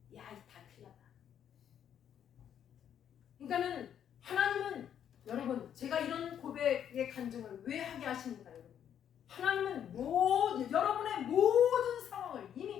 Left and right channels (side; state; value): right; quieter; 9.3 dB